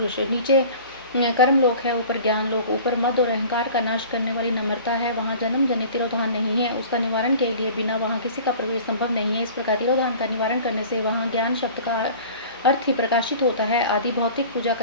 नीचे कर्म लोक है, ऊपर ज्ञान लोक, ऊपर मद और अहंकार का नाश करने वाली नम्रता है। वहाँ जन्म जनित तिरोधान नहीं है, उसका निवारण के लिए बिना वहाँ किसी का प्रवेश संभव नहीं है। इस प्रकार तिरोधान का निवारण करने से वहाँ ज्ञान शब्द का अर्थ ही प्रकाशित होता है। आदि भौतिक पूजा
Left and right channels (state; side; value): inverted; both; correlation -0.43